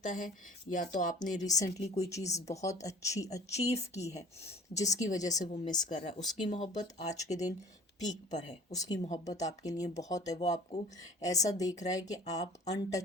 है या तो आपने रिसेंटली कोई चीज़ बहुत अच्छी अचीव की है जिसकी वजह से वो मिस कर रहा है। उसकी मोहब्बत आज के दिन पीक पर है, उसकी मोहब्बत आपके लिए बहुत है। वो आपको ऐसा देख रहा है कि आप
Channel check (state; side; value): normal; both; correlation 0.46